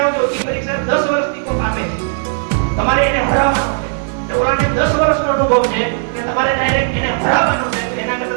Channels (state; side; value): silent; left; digital silence